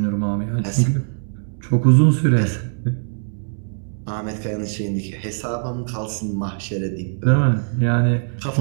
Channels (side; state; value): left; silent; digital silence